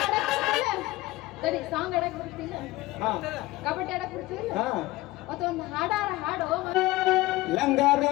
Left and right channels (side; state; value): right; quieter; 19.3 dB